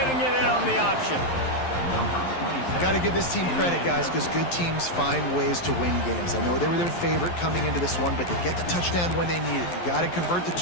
it in on the option? Got to give this team credit, guys, because good teams find ways to win games. I know they were their favorite coming into this one, but they get the touchdown when they need it. You got to convert the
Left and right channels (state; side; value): late; right; 11 ms